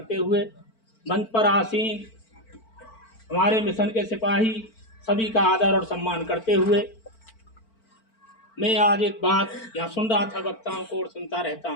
हुए मंच पर आसीन हमारे मिशन के सिपाही सभी का आदर और सम्मान करते हुए मैं आज एक बात यहाँ सुन रहा था, वक्ताओं को और सुनता रहता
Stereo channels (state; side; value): late; right; 4.4 ms